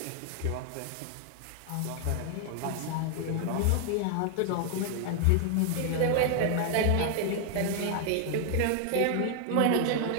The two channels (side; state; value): both; different; correlation 0.00